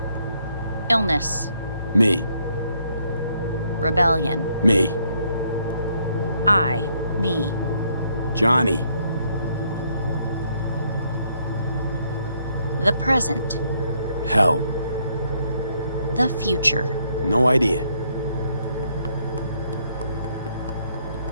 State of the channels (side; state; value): both; inverted; correlation -0.71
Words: Illness. Me. Rebellion. Me. Me. Johnny. The present. Hell. The future. No idea.